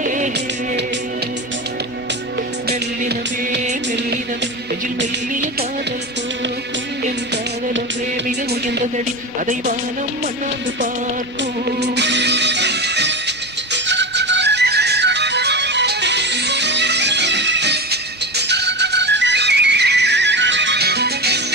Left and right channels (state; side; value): normal; both; correlation 0.22